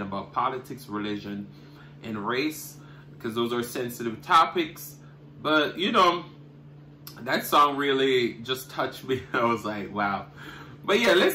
about politics, religion, and race, because those are sensitive topics. But, you know, that song really just touched me. I was like, wow. But yeah,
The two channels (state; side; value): identical; both; correlation 1.00